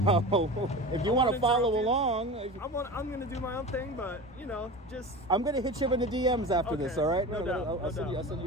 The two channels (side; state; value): both; normal; correlation 0.31